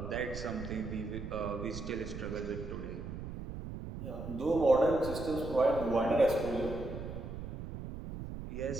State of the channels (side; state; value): right; noise; rumble, 8 dB below the sound